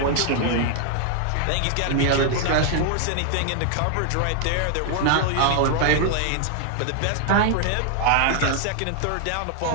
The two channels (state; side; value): different; both; correlation 0.00